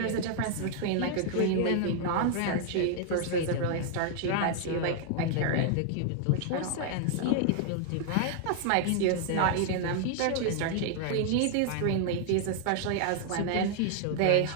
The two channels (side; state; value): both; different; correlation 0.00